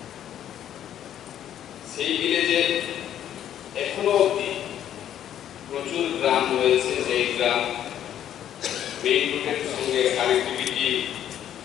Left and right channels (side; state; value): right; quieter; 10.7 dB